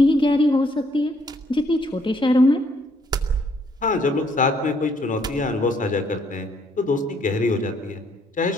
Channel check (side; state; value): both; normal; correlation 0.68